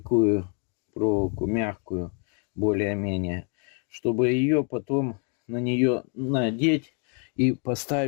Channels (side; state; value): right; quieter; 40.0 dB